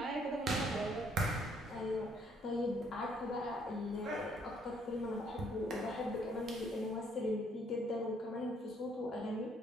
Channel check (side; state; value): both; normal; correlation 0.67